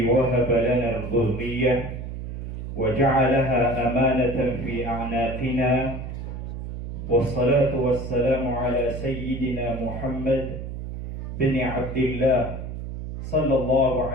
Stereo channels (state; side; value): noise; right; hum, 7 dB below the sound